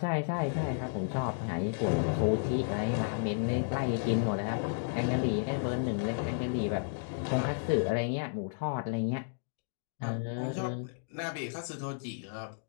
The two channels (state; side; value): silent; right; digital silence